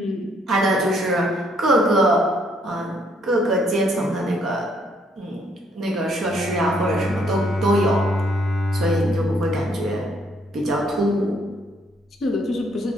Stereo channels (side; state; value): both; normal; correlation 0.68